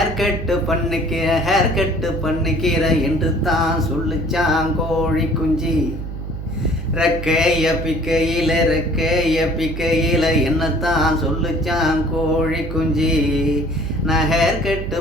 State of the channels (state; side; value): noise; right; hum, 7 dB below the sound